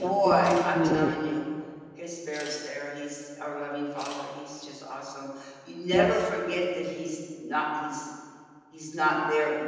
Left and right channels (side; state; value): both; identical; correlation 1.00